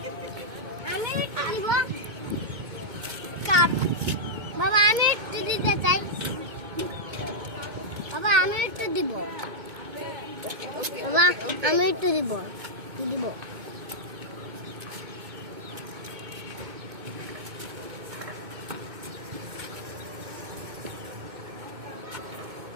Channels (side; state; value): left; late; 2.2 ms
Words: আমি একটু দিব কাপ। বাবা আমি একটু দিতে চাই, বাবা আমি একটু দিব, বাবা আমি একটু দিব দিব।